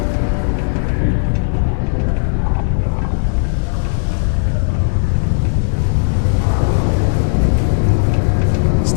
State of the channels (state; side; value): silent; right; digital silence